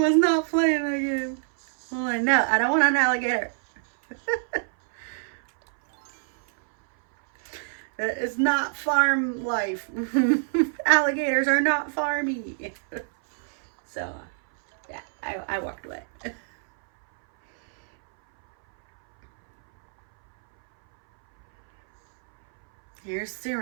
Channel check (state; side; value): silent; left; 61 dB below the other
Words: not playing that game. I'm like, no, I don't want an alligator. It's not farm life. Alligators are not farmy. So, yeah, I walked away. Here's